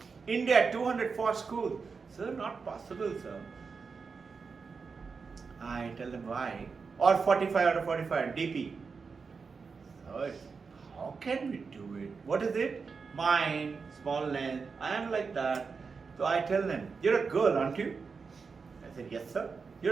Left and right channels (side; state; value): left; quieter; 5.1 dB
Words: India, 204 schools. Sir, not possible, sir. I tell them why. Or 45 out of 45, DP. So, how can we do it? What is it? Mind, small length. I am like that. So I tell them, you're a girl, aren't you? I said, yes, sir.